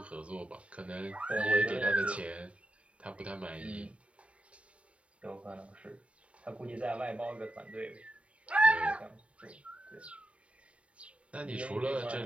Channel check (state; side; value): late; left; 0.063 ms